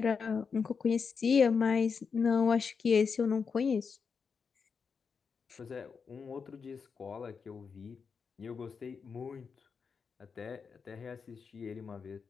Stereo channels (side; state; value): right; quieter; 5.7 dB